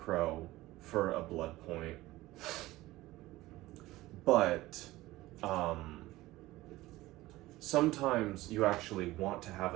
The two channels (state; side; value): quieter; left; 17.8 dB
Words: for a blood point. But, sometimes you actually want to have